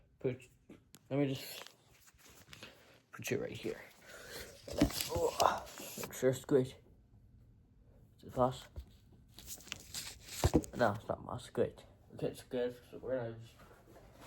put you right here. Oh, make sure it's good. Is it fast? No, it's not moss. Good. Okay, it's good. So we're gonna just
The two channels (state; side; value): identical; both; correlation 1.00